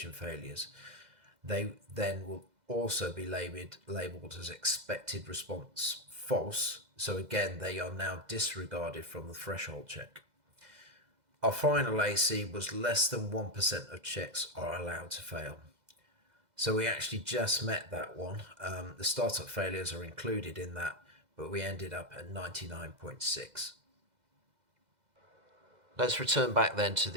failures. They then will also be labeled as expected response false. So again, they are now disregarded from the threshold check. Our final AC was less than 1% of checks are allowed to fail. So we actually just met that one. The startup failures are included in that, but we ended up at 99.6. Let's return back then to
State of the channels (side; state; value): left; late; 2.0 ms